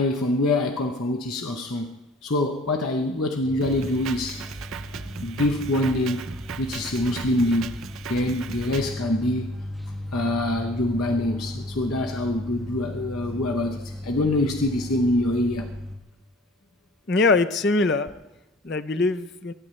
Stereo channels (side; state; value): both; normal; correlation 0.49